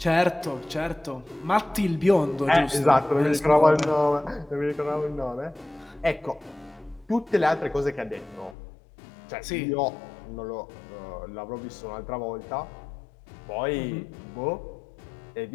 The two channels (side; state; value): right; drops out; at 8.6 s